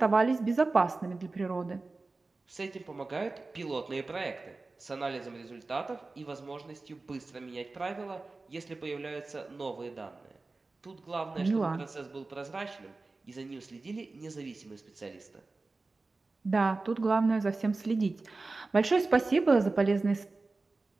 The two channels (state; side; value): quieter; left; 3.5 dB